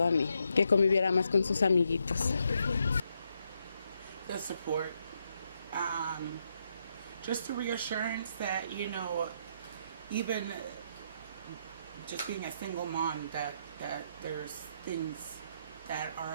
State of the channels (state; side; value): inverted; both; correlation -0.79